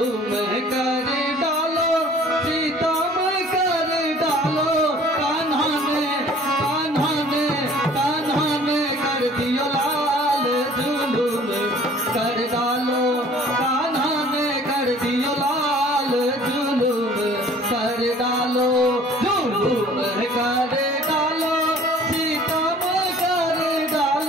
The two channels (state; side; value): normal; both; correlation 0.51